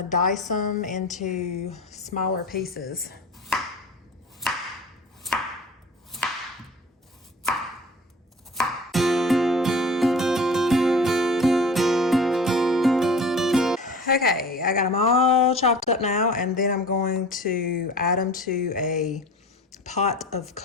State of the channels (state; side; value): normal; both; correlation 0.40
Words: dice them into smaller pieces. Okay, I got them all chopped up now, and then I'm going to add them to a pot of